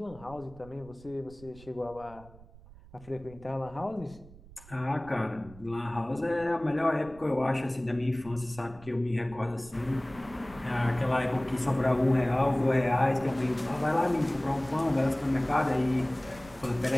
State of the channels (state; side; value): noise; right; rumble, 21 dB below the sound